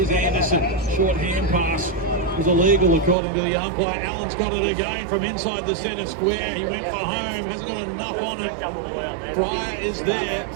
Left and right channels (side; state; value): left; drops out; at 3.2 s